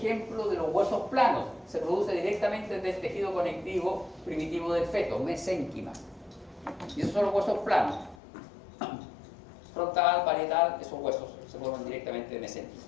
de los huesos planos. Se produce directamente desde el tejido conectivo primitivo del feto, mesénquima. Y esos son los huesos planos. Frontal, parietal, esos huesos se forman directamente de mesénquima.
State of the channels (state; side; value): drops out; right; at 8.2 s